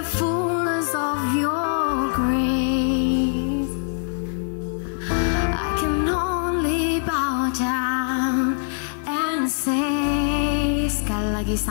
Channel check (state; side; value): silent; right; digital silence